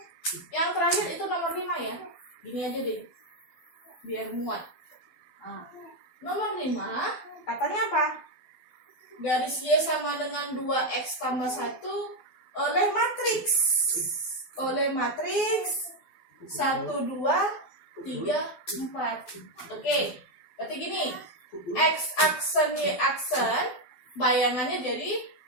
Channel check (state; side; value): late; right; 12 ms